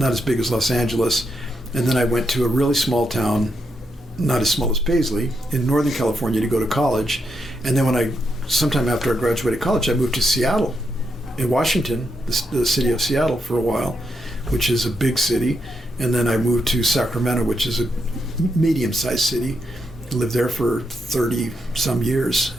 big as Los Angeles. And then I went to a really small town not as small as Paisley, in Northern California to go to college. And then sometime after I graduated college, I moved to Seattle, in Washington, the city of Seattle for a while, which is a big city. And then I moved to Sacramento, which is a medium-sized city. I lived there for 30-some years.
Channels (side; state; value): both; normal; correlation 0.82